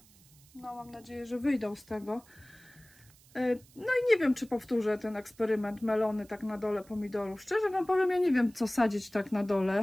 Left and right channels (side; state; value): right; noise; hiss, 27 dB below the sound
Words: no mam nadzieję, że wyjdą z tego. No i nie wiem, czy powtórzę ten eksperyment melony tak na dole pomidorów. Szczerze wam powiem, ja nie wiem, co sadzić tak na